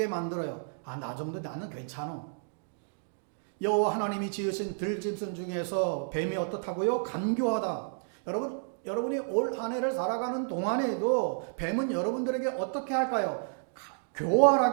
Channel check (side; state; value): left; silent; digital silence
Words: 만들어요. 나 정도 나는 괜찮아. 여호와 하나님이 지으신 들짐승 중에서 뱀이 어떻다고요? 간교하다. 여러분이 올 한 해를 살아가는 동안에도 뱀은 여러분들에게 어떻게 할까요?